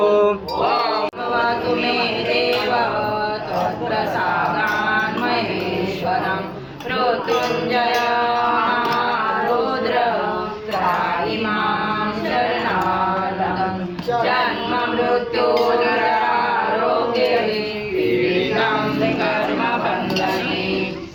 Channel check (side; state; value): both; identical; correlation 1.00